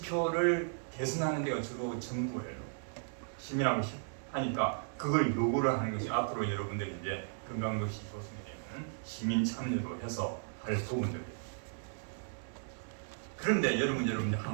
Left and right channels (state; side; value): silent; left; digital silence